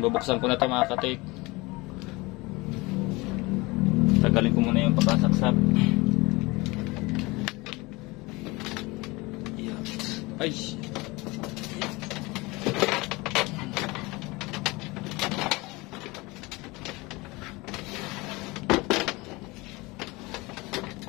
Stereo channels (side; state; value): right; quieter; 23.6 dB